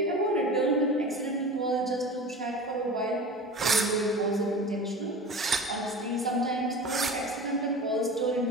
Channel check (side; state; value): both; normal; correlation 0.35